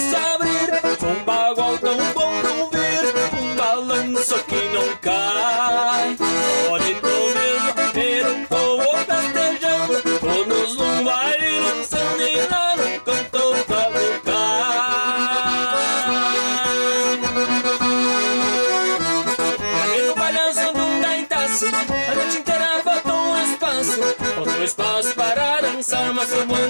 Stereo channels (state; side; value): inverted; both; correlation -1.00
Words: abrir, um bagual tão bom não ver, um balanço que não cai. Bonito mesmo ver um povo festejando, todos num baile lançando e lá no canto cavucar. No balanço de um gaitaço, a noite inteira faltou um espaço. Faltou espaço para dançar, mas sobrou